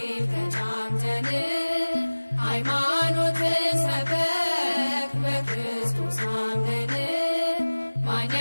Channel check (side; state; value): both; inverted; correlation -1.00